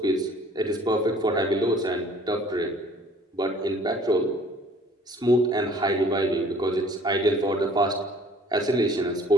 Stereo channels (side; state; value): both; normal; correlation 0.54